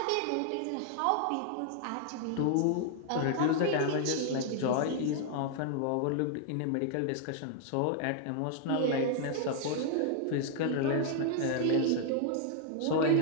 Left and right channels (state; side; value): different; both; correlation 0.00